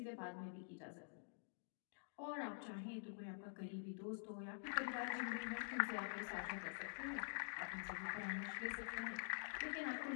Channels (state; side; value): silent; right; digital silence